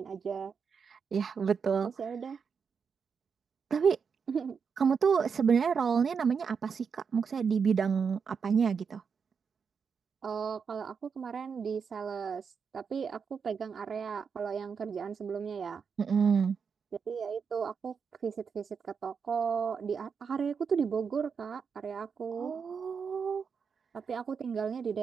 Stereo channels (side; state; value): left; quieter; 6.1 dB